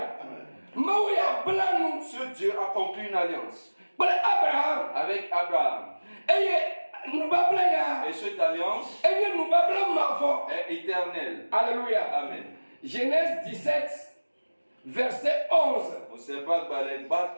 Mawu ya bla nu ce Dieu a conclu une alliance kple Abraham. avec Abraham. Eye nubabla ya. Et cette alliance Enye nubabla mavɔ. est éternelle. Alléluia. Amen. Genèse 17, Verset 11.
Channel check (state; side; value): inverted; both; correlation -1.00